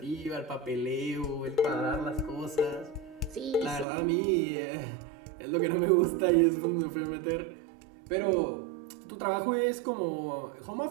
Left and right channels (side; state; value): left; drops out; at 3.9 s